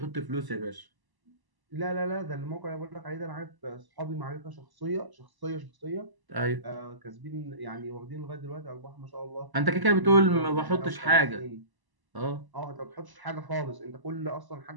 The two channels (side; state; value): left; late; 1.0 ms